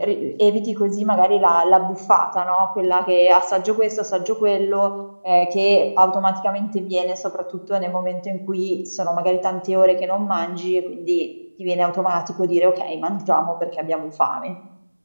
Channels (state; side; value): inverted; both; correlation -1.00